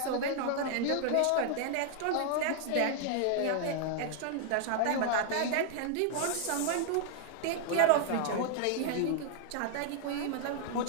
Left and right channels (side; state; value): both; different; correlation 0.00